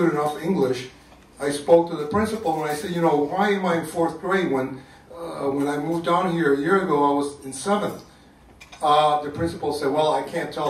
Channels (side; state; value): both; identical; correlation 1.00